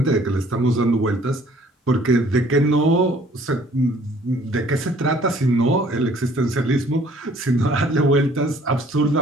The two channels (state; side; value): normal; both; correlation 0.57